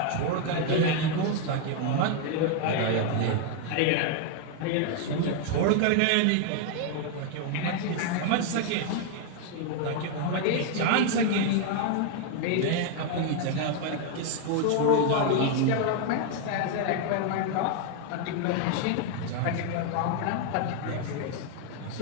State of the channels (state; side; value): different; both; correlation 0.00